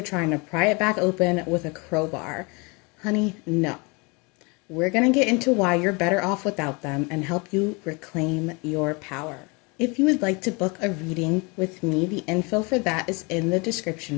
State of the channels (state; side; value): quieter; right; 29.0 dB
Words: trying to pry it back open with a crowbar. Honey, no. We're going to get into why you're better off without them and help you reclaim your power. If you would like to book a reading with me, the info for that is in the